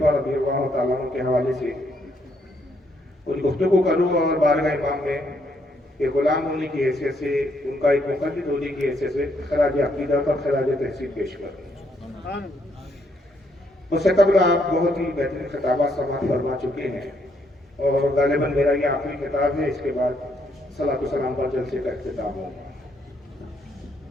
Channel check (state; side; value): normal; both; correlation 0.72